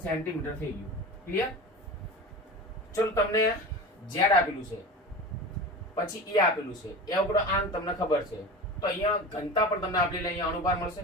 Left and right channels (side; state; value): both; normal; correlation 0.31